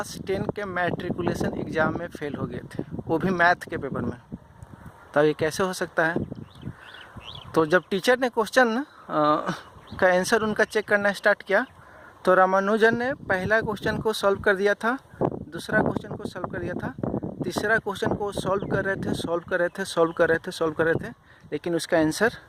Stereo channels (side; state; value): both; identical; correlation 1.00